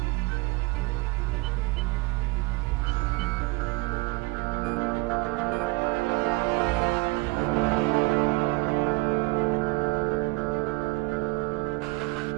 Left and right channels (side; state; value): left; quieter; 24.0 dB